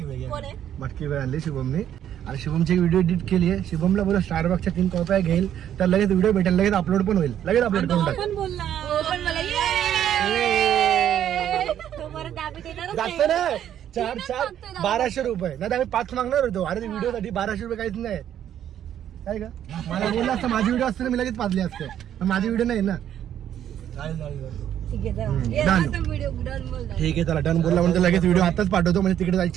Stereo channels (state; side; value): quieter; left; 10.4 dB